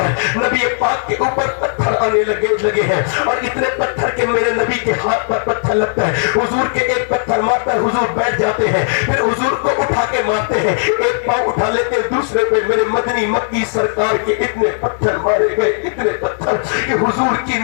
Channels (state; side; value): silent; right; digital silence